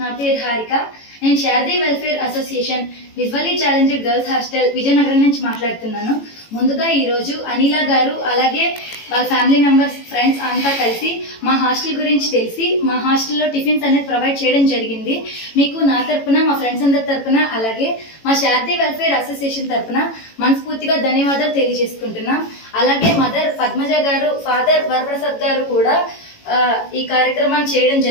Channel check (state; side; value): late; right; 18 ms